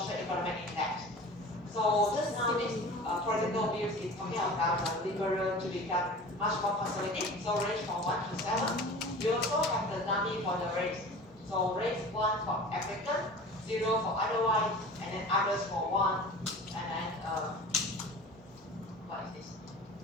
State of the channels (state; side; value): normal; both; correlation 0.39